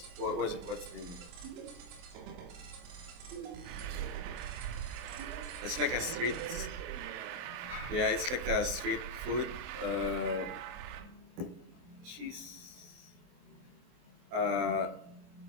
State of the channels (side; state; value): left; late; 23 ms